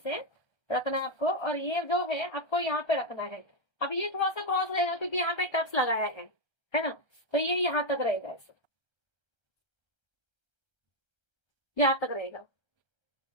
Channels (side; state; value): right; late; 1.3 ms